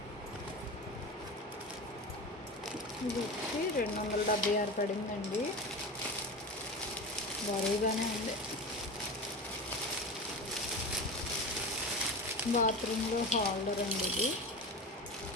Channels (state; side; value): normal; both; correlation 0.27